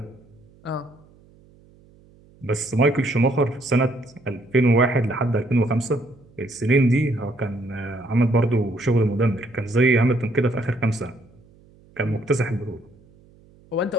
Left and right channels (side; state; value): right; noise; hum, 28 dB below the sound